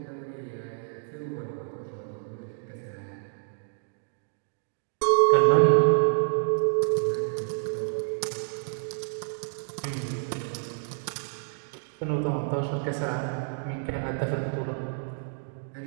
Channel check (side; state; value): left; silent; digital silence